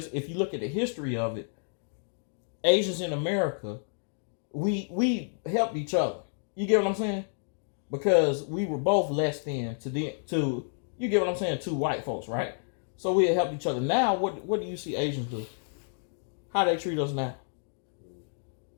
if you look at the history of it, Asians in America, we helped each other. You get what I'm saying? Because we were both less than to you get what I'm saying, two white folks, right? So we helped each other. Now, what do you see Asians do? How they treat us now?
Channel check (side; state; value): right; silent; digital silence